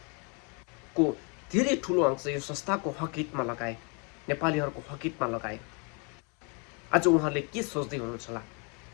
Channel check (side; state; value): right; quieter; 34.7 dB